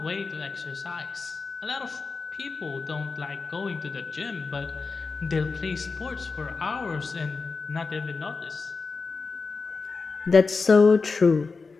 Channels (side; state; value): right; quieter; 4.4 dB